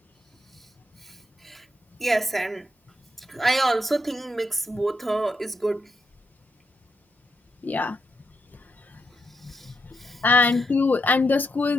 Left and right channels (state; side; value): normal; both; correlation 0.82